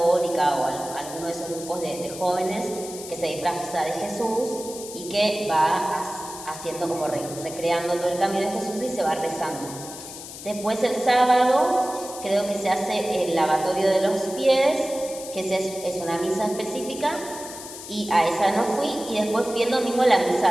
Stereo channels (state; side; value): noise; left; hiss, 12 dB below the sound